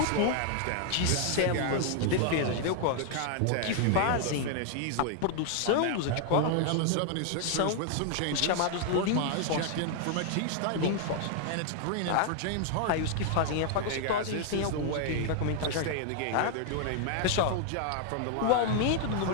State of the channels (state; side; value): different; both; correlation 0.00